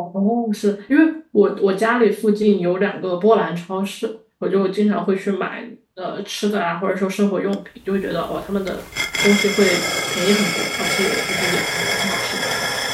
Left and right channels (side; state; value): both; identical; correlation 1.00